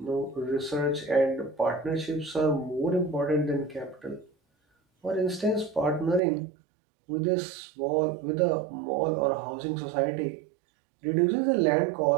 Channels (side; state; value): left; drops out; at 6.2 s